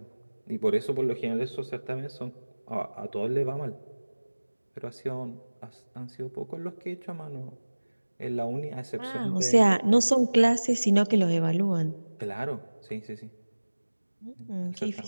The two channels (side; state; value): both; inverted; correlation -1.00